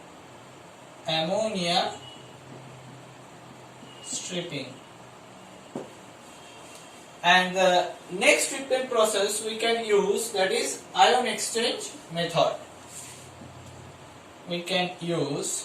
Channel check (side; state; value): both; identical; correlation 1.00